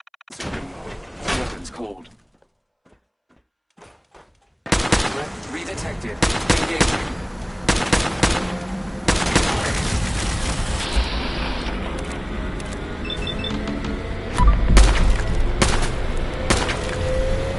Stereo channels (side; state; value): both; identical; correlation 1.00